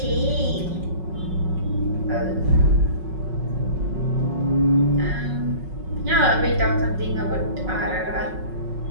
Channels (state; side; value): late; left; 5.4 ms